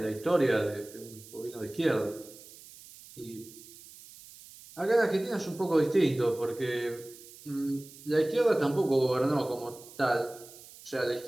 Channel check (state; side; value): noise; right; hiss, 19 dB below the sound